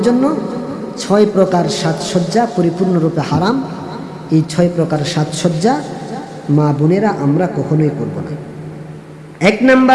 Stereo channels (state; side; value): identical; both; correlation 1.00